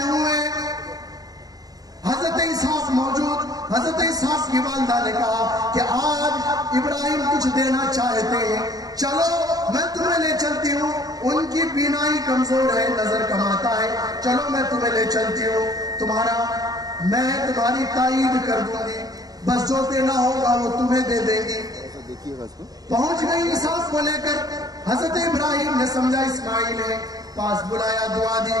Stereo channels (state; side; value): late; left; 0.18 ms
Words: ہوئے۔ حضرت اسحاق موجود، حضرت اسحاق کی والدہ نے کہا کہ آج ابراہیم کچھ دینا چاہتے ہیں، چلو میں تمہیں لے چلتی ہوں، ان کی بینائی کمزور ہے، نظر کم آتا ہے، چلو میں تمہیں لے چلتی ہوں، میں تمہاری تائید کر دوں گی، بس جو دینا ہوگا وہ تمہیں دے دیں گی۔ پہنچ گئی اسحاق کو لے کر، حضرت ابراہیم نے سمجھا اسماعیل ہے، پاس بلایا، دعا دی